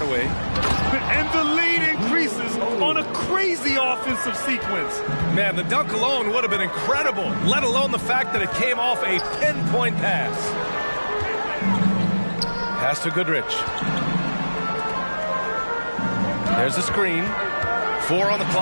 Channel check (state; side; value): inverted; both; correlation -1.00